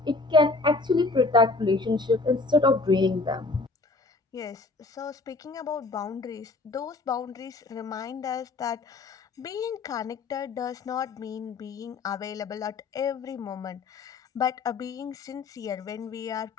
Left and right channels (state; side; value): quieter; right; 3.6 dB